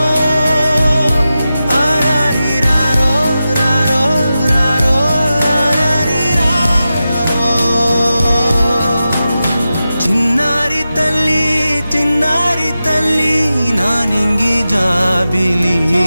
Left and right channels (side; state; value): both; inverted; correlation -0.92